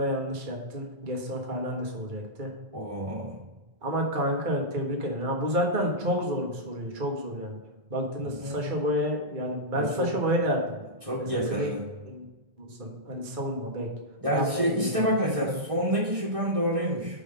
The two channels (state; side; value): late; left; 1.6 ms